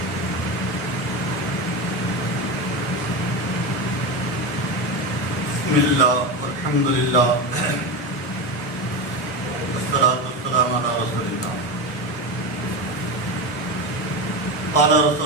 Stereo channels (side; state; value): both; normal; correlation 0.18